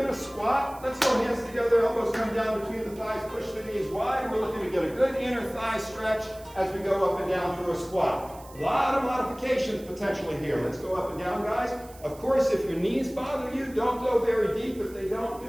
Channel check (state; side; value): noise; right; hiss, 22 dB below the sound